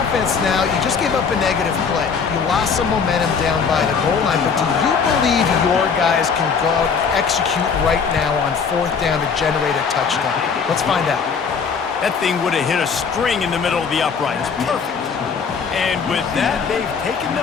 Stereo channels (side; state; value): right; quieter; 5.9 dB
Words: offense now. You just gave up a negative play. You lost some momentum down by the goal line, but do you believe your guys can go out and execute right now on fourth down to generate a touchdown? Let's find out. That thing would have hit a string in the middle of the uprights. Perfect. And with that, they've taken